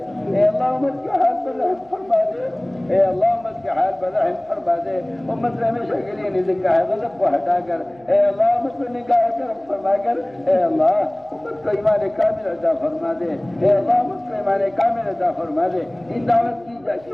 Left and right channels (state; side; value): noise; right; hum, 28 dB below the sound